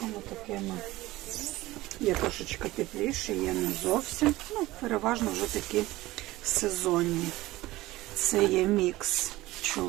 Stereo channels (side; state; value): left; quieter; 18.3 dB